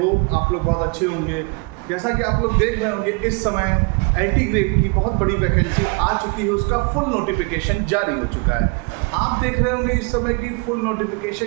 आप लोग बहुत अच्छे होंगे। जैसा कि आप लोग देख रहे होंगे, इस समय IT ग्रेड की बहुत बड़ी वैकेंसी आ चुकी है, उसका फुल नोटिफिकेशन जारी हो चुका है। आप देख रहे होंगे इस समय की फुल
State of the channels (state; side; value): quieter; left; 32.4 dB